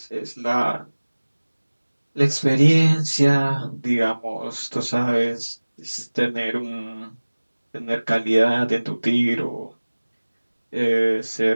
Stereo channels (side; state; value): both; inverted; correlation -1.00